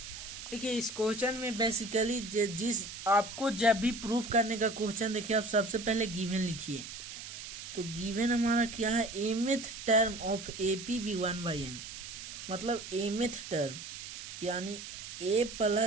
देखिए इस question में basically जिस आपको जब भी proof करने का question देखिए आप सबसे पहले गिवन लिखिए। तो गिवन हमारा क्या है, mth term of AP be 1/n, मतलब एमिथ टर्म यानी a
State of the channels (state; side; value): noise; right; hiss, 10 dB below the sound